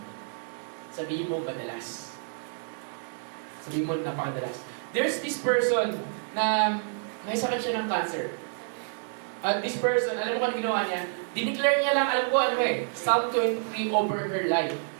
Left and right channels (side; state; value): left; silent; digital silence